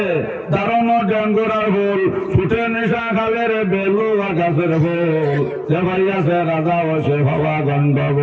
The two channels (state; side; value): identical; both; correlation 1.00